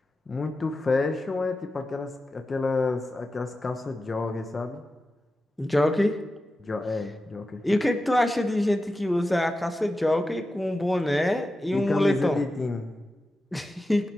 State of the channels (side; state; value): both; normal; correlation 0.92